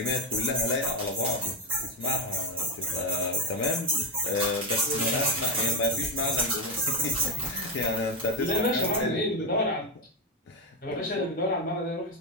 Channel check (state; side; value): normal; both; correlation 0.08